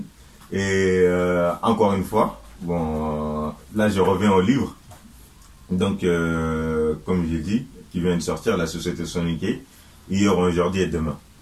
Et encore une fois, bon, là je reviens au livre. Donc, comme j'ai dit, qui vient de sortir, La Société Soniquée, hier, aujourd'hui et demain.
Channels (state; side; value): identical; both; correlation 1.00